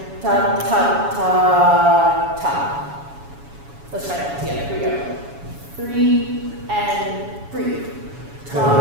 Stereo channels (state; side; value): late; left; 7.1 ms